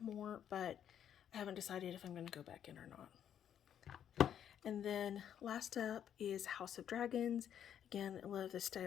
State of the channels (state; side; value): quieter; right; 9.5 dB